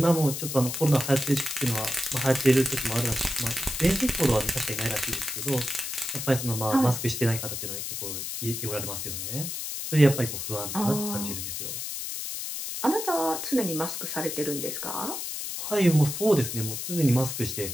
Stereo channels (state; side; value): noise; left; hiss, 5 dB below the sound